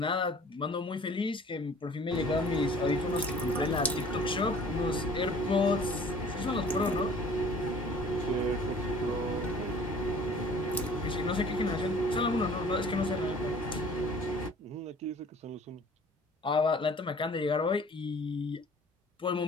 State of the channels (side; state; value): both; normal; correlation 0.50